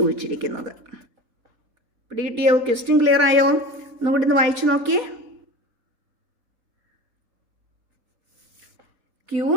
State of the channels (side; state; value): left; late; 3.8 ms